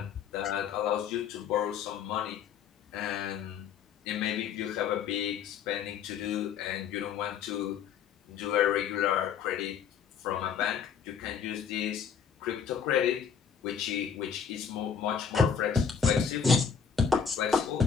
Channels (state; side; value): quieter; right; 7.0 dB